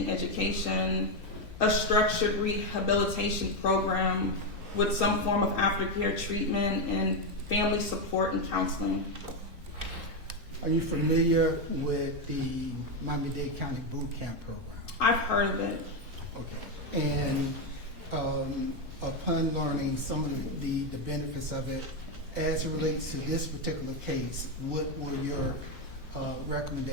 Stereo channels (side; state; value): both; normal; correlation 0.06